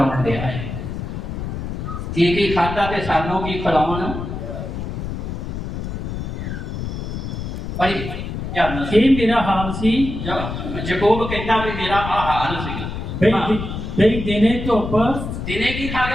ਦਿਆ ਹੈ, ਕੀ ਖਾਧਾ ਤੇ ਸਾਨੂੰ ਕੀ ਖਿਲਾਉਣ। ਭਾਈ ਇਹ ਮੇਰਾ ਹਾਲ ਸੀ। ਯਾਕੂਬ ਕਹਿੰਦਾ ਵੀ ਮੇਰਾ ਆ ਹਾਲ ਸੀ। ਬਈ ਦਿਨੇ ਧੁੱਪ, ਦਿਨੇ ਕੀ ਖਾ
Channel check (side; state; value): left; noise; rumble, 5 dB below the sound